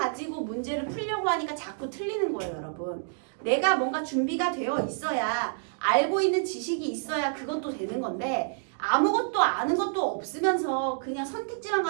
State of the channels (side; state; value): left; silent; digital silence